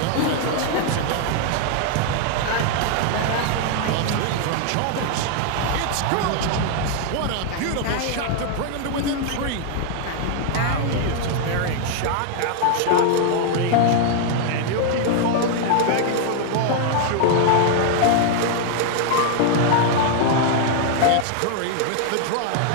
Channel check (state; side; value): different; both; correlation 0.00